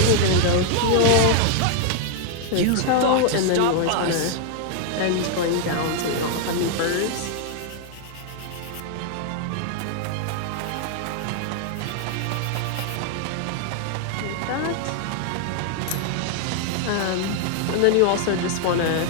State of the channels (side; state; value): both; different; correlation 0.00